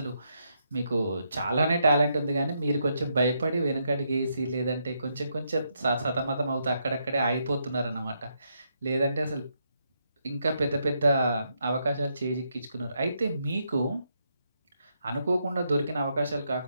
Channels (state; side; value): inverted; both; correlation -0.79